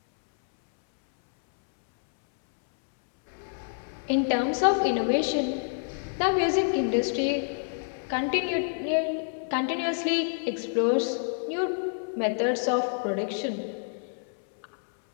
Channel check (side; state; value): right; silent; 60 dB below the other